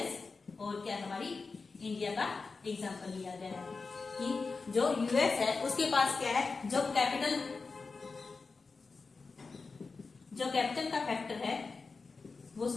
और क्या हमारी इंडिया का एग्जांपल लिया गया है कि जो यूएस है उसके पास क्या है, जो कैपिटल का फैक्टर है वो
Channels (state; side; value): quieter; right; 4.3 dB